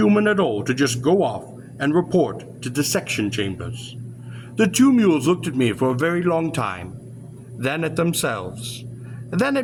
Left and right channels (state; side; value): identical; both; correlation 1.00